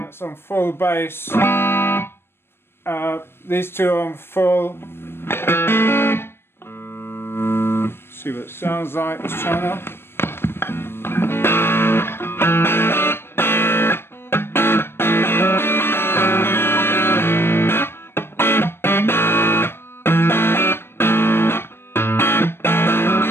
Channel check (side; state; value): right; late; 0.11 ms